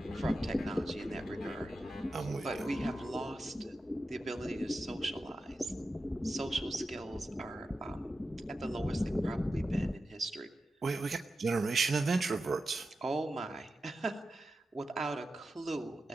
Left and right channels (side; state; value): both; normal; correlation 0.91